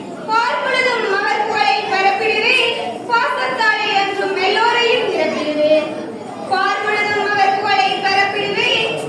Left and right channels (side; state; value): both; identical; correlation 1.00